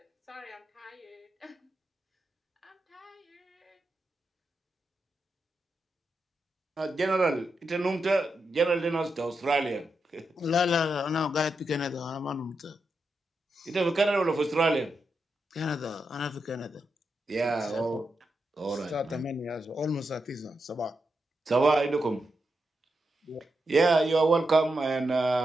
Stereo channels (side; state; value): both; normal; correlation 0.86